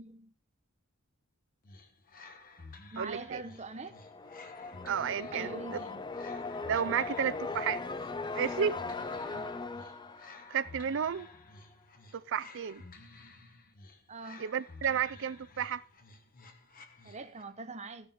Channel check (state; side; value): quieter; left; 4.6 dB